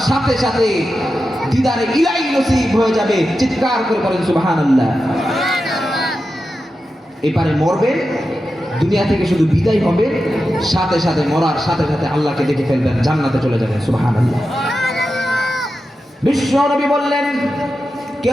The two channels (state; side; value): normal; both; correlation 0.90